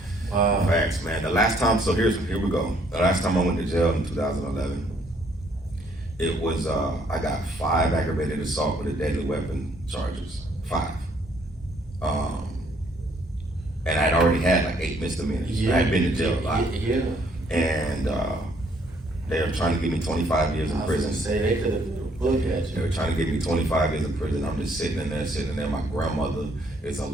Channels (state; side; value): normal; both; correlation 0.66